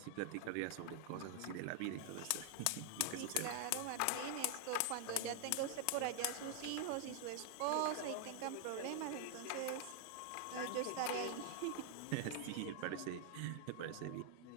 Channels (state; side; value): different; both; correlation 0.00